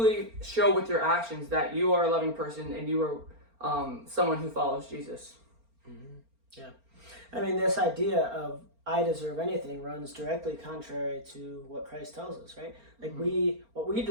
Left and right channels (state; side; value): late; left; 4.4 ms